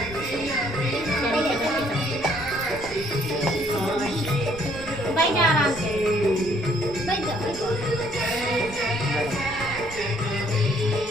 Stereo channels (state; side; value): noise; right; rumble, 17 dB below the sound